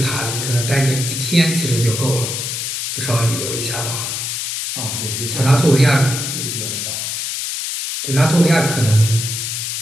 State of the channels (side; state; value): left; noise; hiss, 3 dB below the sound